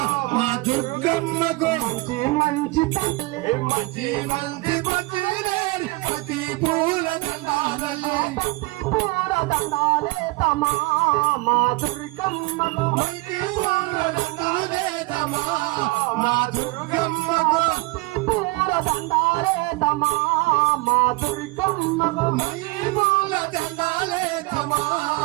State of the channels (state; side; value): quieter; left; 23.4 dB